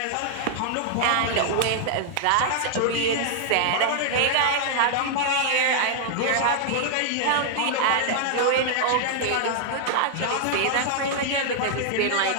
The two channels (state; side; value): different; both; correlation -0.01